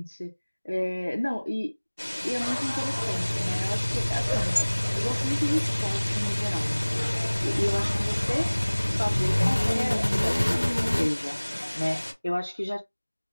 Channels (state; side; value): inverted; both; correlation -1.00